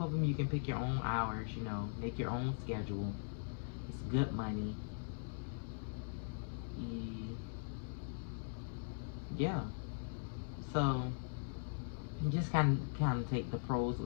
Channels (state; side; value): silent; right; digital silence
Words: of them, you can pick your own hours, you know, make your own schedule. It's good money. Yeah. So you just kind of take the pros